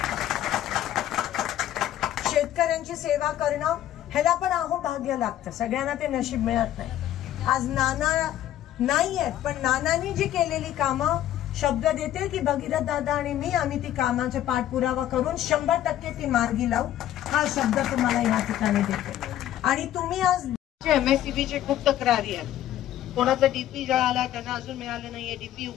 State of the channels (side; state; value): right; quieter; 12.3 dB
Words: शेतकऱ्यांची सेवा करणं ह्याला पण भाग्य लागतं, सगळ्यांना ते नशीब मिळत नाही। आज नाना नाही आहेत, पण नानांनी जी केलेली कामं शब्द देते की भगीरथ दादा आणि मी आम्ही ती कामाचा पाठपुरावा करून 100% ती मार्गी लावू, हा शब्द तुम्हाला या ठिकाणी देते। आणि तुम्ही आज MSCBचे खूप तक्रारी आहेत, कोणाचा डीपी जळाला त्यांना अजून मिळालं नाहीये, डीपी